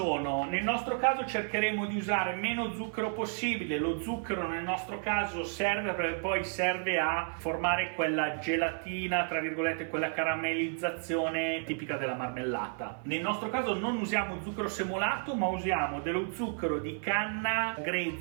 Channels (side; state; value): left; silent; 56 dB below the other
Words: Nel nostro caso cercheremo di usare meno zucchero possibile. Lo zucchero nel nostro caso serve perché poi serve a formare quella gelatina, tra virgolette, quella caramellizzazione tipica della marmellata. Nel nostro caso non usiamo zucchero semolato, ma usiamo dello zucchero di canna